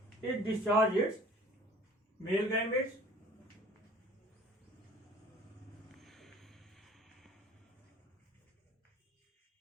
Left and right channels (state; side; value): normal; both; correlation 0.49